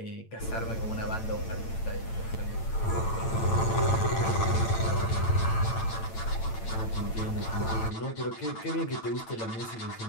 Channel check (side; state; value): right; late; 8.9 ms